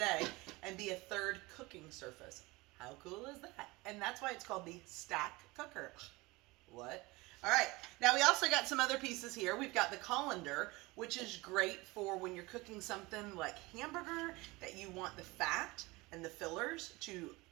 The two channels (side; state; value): left; quieter; 22.6 dB